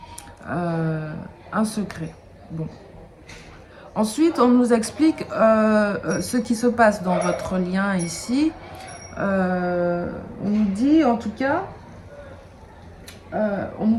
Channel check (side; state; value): both; identical; correlation 1.00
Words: un secret. Bon. Ensuite, on nous explique ce qui se passe dans votre lien ici. On nous dit, en tout cas, on